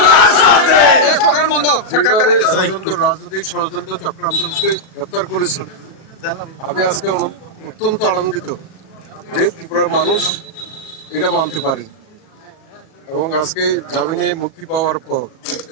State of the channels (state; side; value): late; right; 37 ms